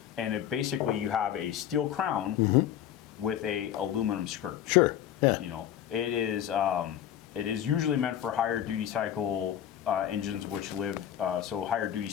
And it basically, you have a steel crown with a aluminum skirt. Sure. Yeah. You know, it is usually meant for higher duty cycle engines, which live, so higher duty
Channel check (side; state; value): right; quieter; 10.7 dB